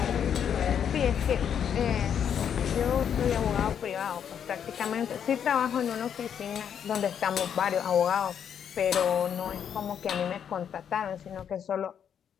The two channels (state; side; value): quieter; right; 8.4 dB